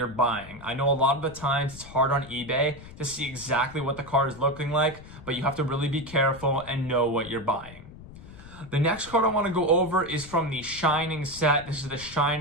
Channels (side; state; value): left; noise; rumble, 17 dB below the sound